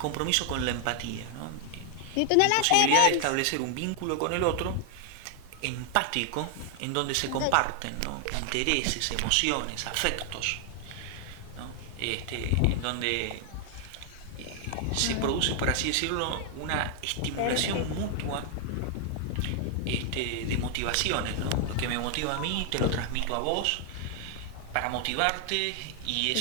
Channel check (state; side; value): different; both; correlation 0.00